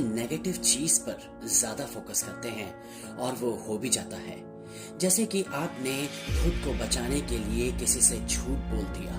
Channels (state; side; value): identical; both; correlation 1.00